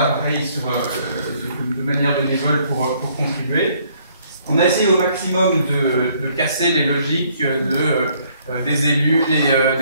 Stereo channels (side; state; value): both; inverted; correlation -0.65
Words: pareil, de manière bénévole pour contribuer. On a essayé au maximum de casser les logiques des élus,